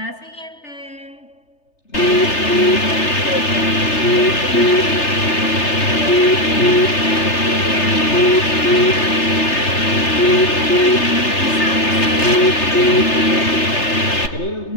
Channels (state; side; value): late; right; 3.3 ms